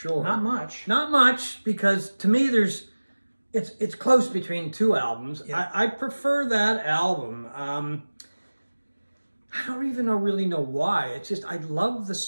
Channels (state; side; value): inverted; both; correlation -1.00